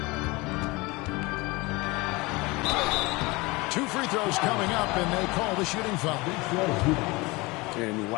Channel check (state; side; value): quieter; right; 23.9 dB